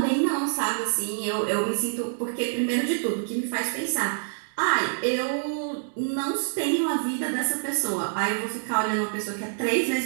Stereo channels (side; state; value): left; silent; digital silence